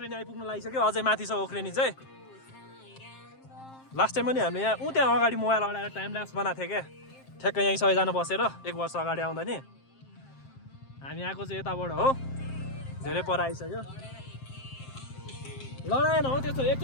आइपुग्नु लागिसक्यो अझै माथि छ ओख्रेनी चाहिँ लास्ट टाइम पनि हामीले यहाँ त्यहाँ अगाडि मोबाइल अडाएर टाइम ल्याप्स बनाएको थियो क्या ठ्याक्कै यहीँ सबैजना बसेर 1 वर्ष अगाडि आउँदा नि हामी आएको चाहिँ यताबाट हो धेरै पर आइसक्यो लडाएन हो त्यस्तो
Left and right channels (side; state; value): right; late; 7.6 ms